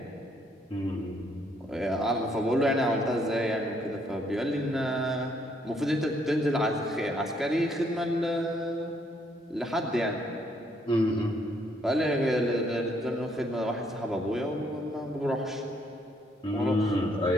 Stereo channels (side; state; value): both; normal; correlation 0.70